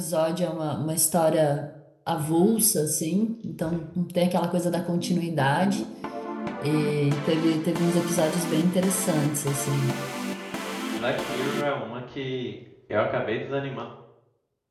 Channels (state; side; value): identical; both; correlation 1.00